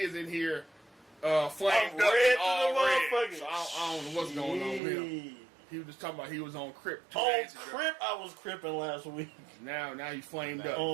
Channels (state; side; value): drops out; left; at 4.8 s